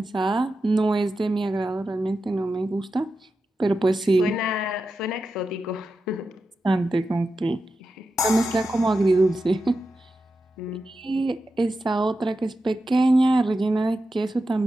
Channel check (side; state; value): both; normal; correlation 0.90